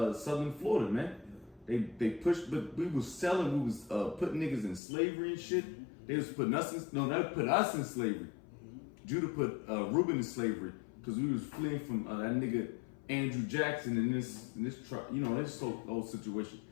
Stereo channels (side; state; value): right; drops out; at 4.8 s